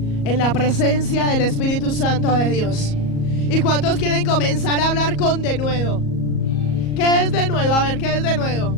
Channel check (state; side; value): late; right; 38 ms